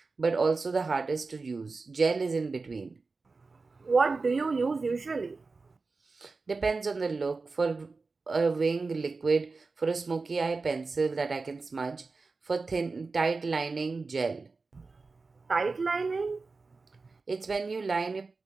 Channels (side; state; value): left; quieter; 4.0 dB